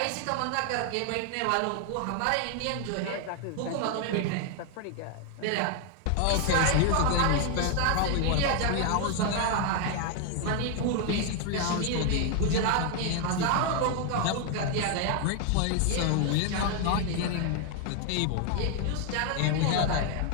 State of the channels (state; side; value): different; both; correlation 0.00